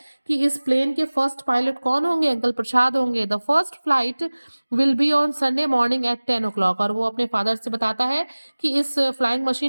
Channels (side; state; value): both; inverted; correlation -1.00